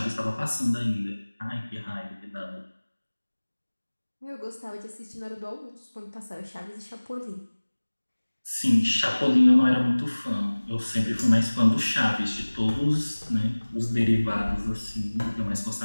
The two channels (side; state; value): both; inverted; correlation -1.00